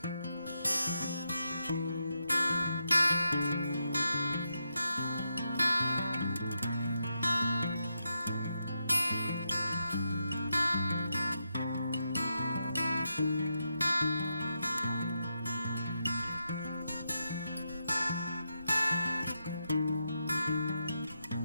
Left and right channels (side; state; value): both; inverted; correlation -0.85